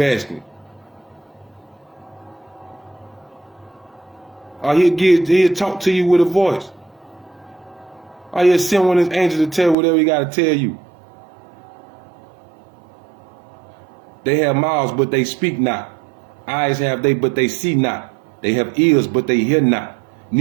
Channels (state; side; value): drops out; left; at 9.8 s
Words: asking. Or he'll talk to you with a voice. Or he'll send one of his angels to tell whatever he got to tell you. They have mouths, but they speak not. Eyes have they, but they see not. They have ears, but they hear not.